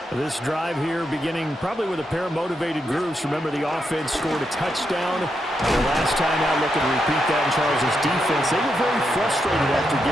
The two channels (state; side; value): normal; both; correlation 0.83